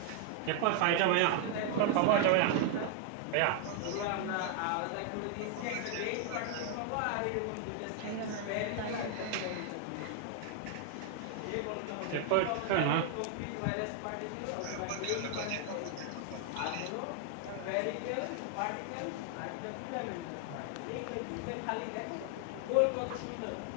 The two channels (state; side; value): different; both; correlation 0.00